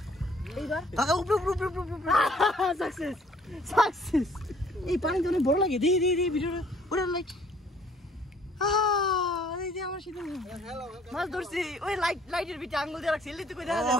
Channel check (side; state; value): both; normal; correlation 0.59